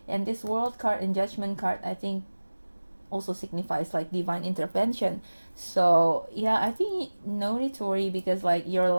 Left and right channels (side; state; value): both; inverted; correlation -1.00